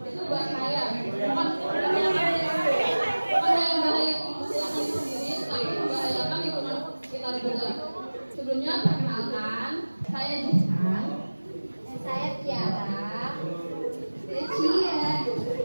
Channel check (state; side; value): inverted; both; correlation -1.00